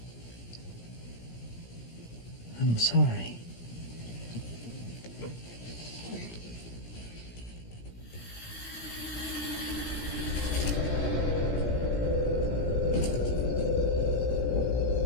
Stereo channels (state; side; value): late; right; 17 ms